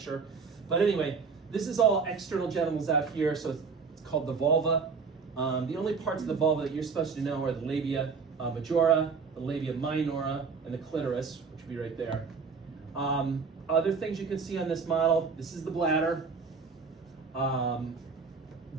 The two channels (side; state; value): left; quieter; 5.2 dB